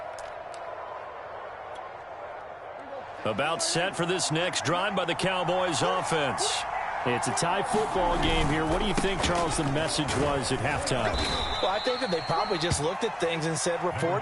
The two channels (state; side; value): identical; both; correlation 1.00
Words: About set for this next drive by the Cowboys offense. It's a tie football game here. What do you think, Charles, the message was at halftime? Well, I think that they probably just looked at things and said, we're